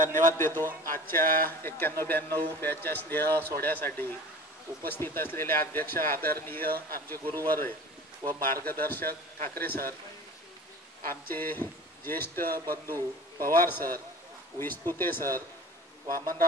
देतो आजच्या 91-92 बॅचच्या स्नेह सोहळ्यासाठी उपस्थित असलेले अध्यक्ष आदरणीय आमचे गुरुवर व मार्गदर्शक ठाकरे सर, आमचे ज्येष्ठ बंधू Pawar sir, विस्तुते sir,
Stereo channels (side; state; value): both; normal; correlation 0.40